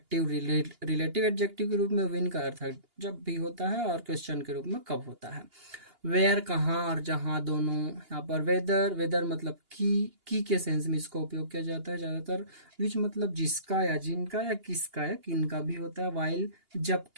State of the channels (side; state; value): left; late; 2.8 ms